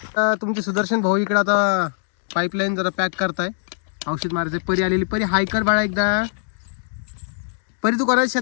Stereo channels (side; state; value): right; silent; digital silence